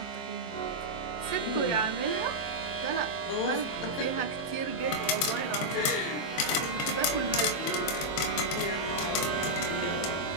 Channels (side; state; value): right; late; 23 ms